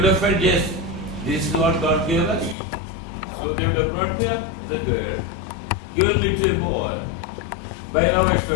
have felt, yes, this is what God gave us. So they would have brought me up as a girl, given me to a boy. By now I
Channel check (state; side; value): drops out; right; at 2.6 s